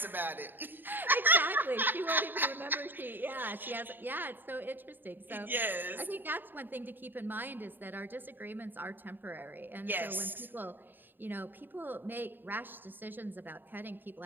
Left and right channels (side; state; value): left; late; 0.093 ms